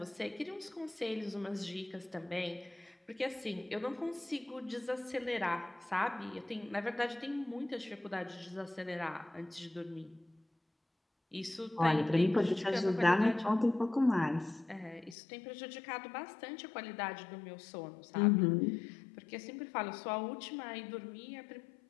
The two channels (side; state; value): right; drops out; at 15.2 s